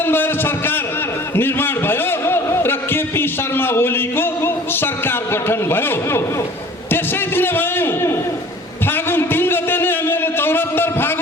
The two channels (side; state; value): both; normal; correlation 0.46